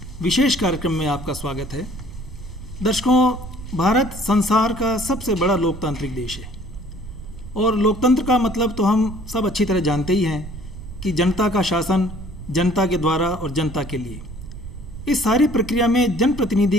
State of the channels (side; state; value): right; noise; rumble, 12 dB below the sound